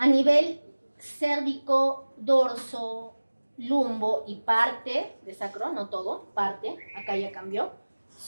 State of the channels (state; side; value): inverted; both; correlation -1.00